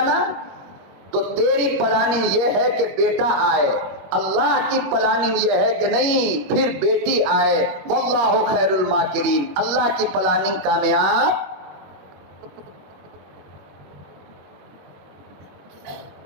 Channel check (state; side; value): late; left; 21 ms